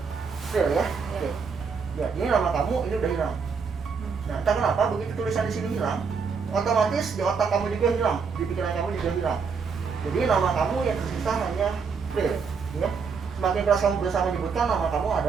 April ya? Ya. Oke. Ya, ini nama kamu ini udah hilang. Nah, entah kenapa begitu tulisan di sini hilang, otomatis di otak kamu juga hilang, di pikiran kamu juga hilang. Jadi nama kamu yang tersisa hanya April. Ya. Semakin keras kamu berusaha menyebutkan nama kamu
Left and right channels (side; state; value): left; quieter; 5.6 dB